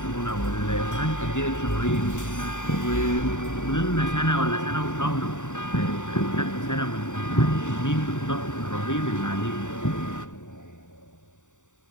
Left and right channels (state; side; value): late; right; 0.86 ms